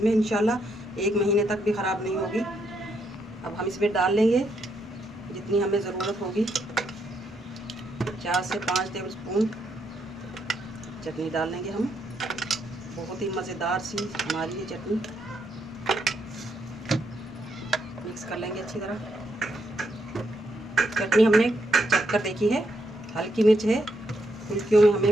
में, इंशाल्लाह 1 महीने तक भी ख़राब नहीं होगी। अब हम इसमें डाल लेंगे जितनी हमें ज़रूरत होगी, 4 से 5 टेबल स्पून चटनी डाल लेंगे हम। बहुत ही मज़ेदार सी हमारी ये चटनी। मिक्स कर लेंगे अच्छी तरह। चटनी हमने चख कर देखी है, हल्की मिर्च है। फुल्कियों में हमें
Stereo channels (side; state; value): both; normal; correlation 0.77